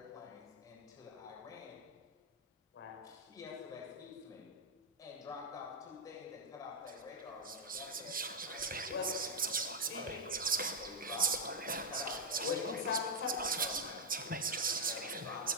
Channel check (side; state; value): both; normal; correlation 0.00